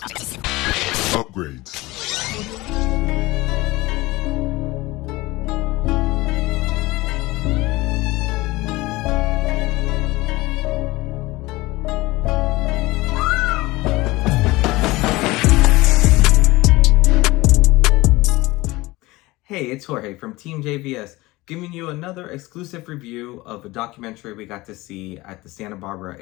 Hey, it's Jorge from TeamJVS, giving you another exclusive review of a documentary we got to see at the Santa Barbara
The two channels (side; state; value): right; quieter; 20.5 dB